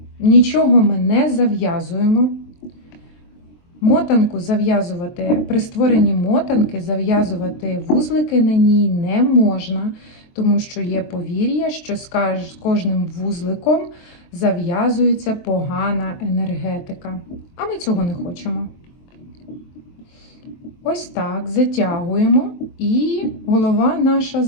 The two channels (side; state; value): right; late; 23 ms